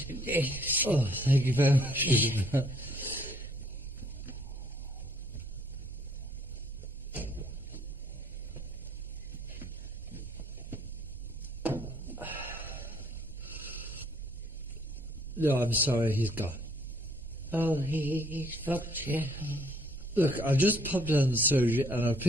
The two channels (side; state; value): both; normal; correlation 0.64